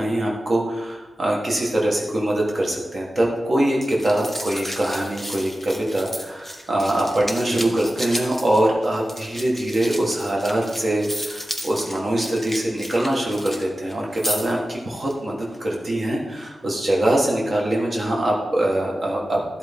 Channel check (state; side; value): normal; both; correlation 0.93